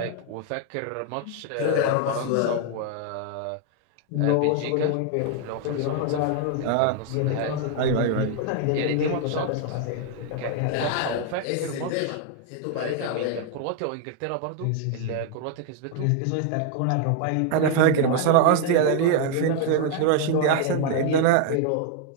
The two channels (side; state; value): both; different; correlation 0.00